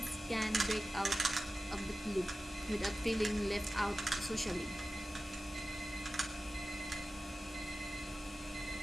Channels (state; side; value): normal; both; correlation 0.94